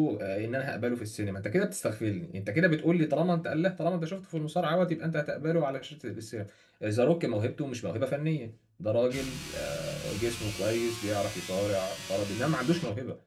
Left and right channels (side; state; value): both; identical; correlation 1.00